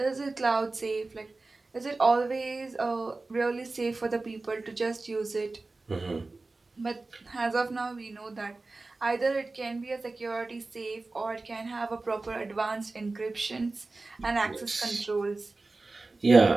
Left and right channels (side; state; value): left; quieter; 3.4 dB